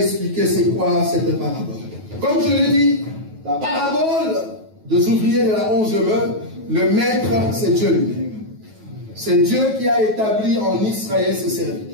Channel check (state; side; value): late; left; 9.3 ms